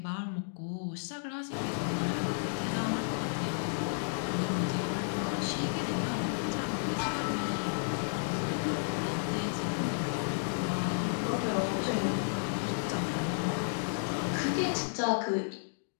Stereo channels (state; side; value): silent; right; digital silence